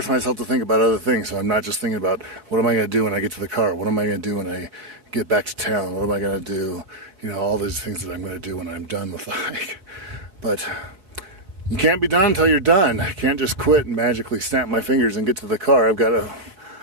myself to think about other things, so I'm not just thinking about what am I going to do when I get to the car? What am I going to do when I get back to town? What am I going to do? All these things that I'm going to do when I'm done with the hike. But you can't be done until you're done. I can't just quit and magically snap my fingers and get to the car. I've got to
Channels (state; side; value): late; left; 4.3 ms